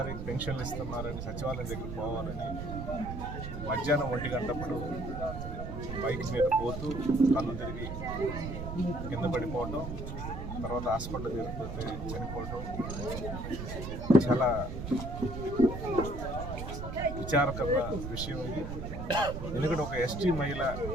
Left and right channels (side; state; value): right; noise; rumble, 6 dB below the sound